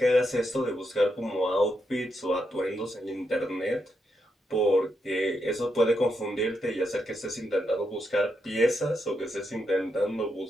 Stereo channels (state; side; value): normal; both; correlation 0.82